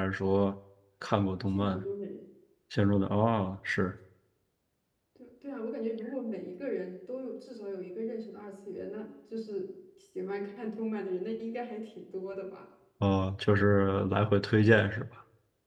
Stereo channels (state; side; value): identical; both; correlation 1.00